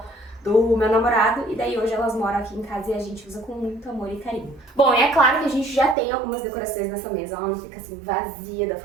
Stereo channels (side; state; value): left; drops out; at 6.0 s